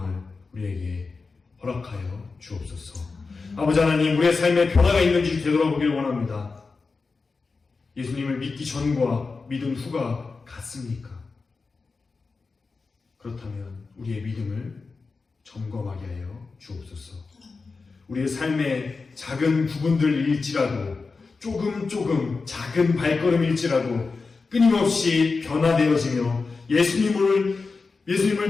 우리에게 허락하여 주옵소서. 아버지 하나님, 우리의 삶에 변화가 있는지 되돌아보기를 원합니다. 예수님을 믿기 전과 믿은 후가 같습니까? 그렇다면 우리의 믿음을 점검하게 하여 주옵소서. 우리의 삶의 작은 부분들일지라도 조금 작은 발걸음일지라도 끊임없이 변화되어지며 예수님을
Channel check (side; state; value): right; quieter; 4.3 dB